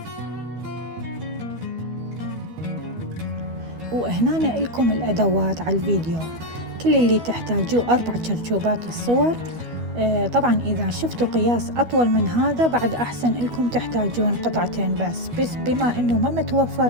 وهنا إلكم الأدوات على الفيديو. كل اللي تحتاجوه 4 شرشوبات الصور. طبعا إذا شفتوا قياس أطول من هذا بعد أحسن لكم تحتاجون قطعتين بس بما أنه ما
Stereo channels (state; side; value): late; left; 12 ms